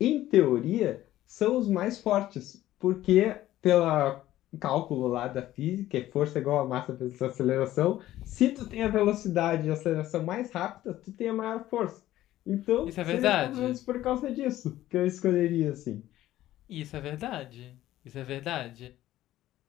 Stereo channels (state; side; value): quieter; right; 14.3 dB